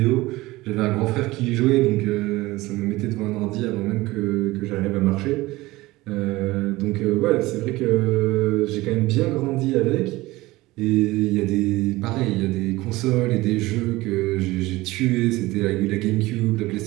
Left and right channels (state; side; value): quieter; left; 19.5 dB